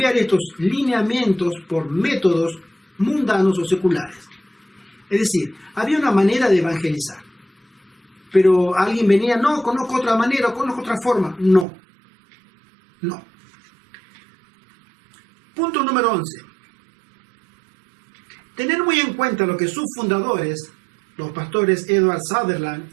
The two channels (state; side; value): drops out; left; at 11.7 s